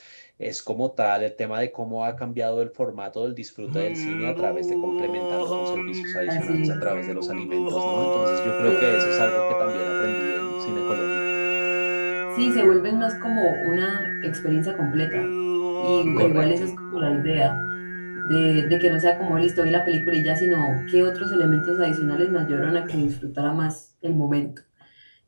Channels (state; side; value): inverted; both; correlation -1.00